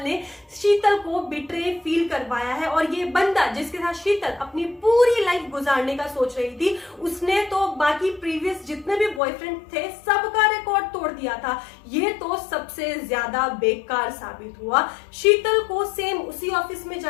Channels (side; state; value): right; drops out; at 9.2 s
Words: ने शीतल को बिट्रे फील करवाया है। और ये बंदा जिसके साथ शीतल अपनी पूरी लाइफ गुजारने का सोच रही थी उसने तो बाकी प्रीवियस जितने भी बॉयफ्रेंड थे सबका रिकॉर्ड तोड़ दिया था। ये तो सबसे ज्यादा बेकार साबित हुआ। शीतल को सेम उसी ऑफिस में